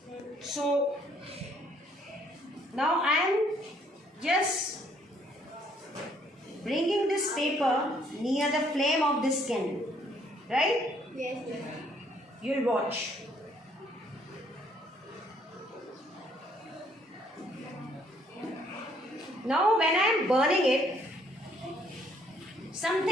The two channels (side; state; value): both; normal; correlation 0.66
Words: So now I am just bringing this paper near the flame of this candle. Right? Yes, sir. You'll watch. Now when I am burning it,